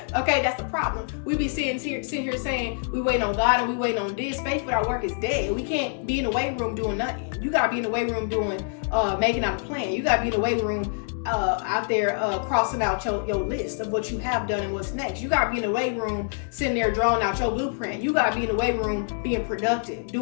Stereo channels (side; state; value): right; silent; 61 dB below the other